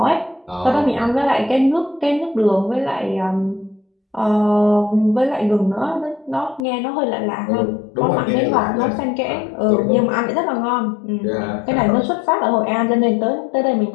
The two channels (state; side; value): drops out; right; at 6.6 s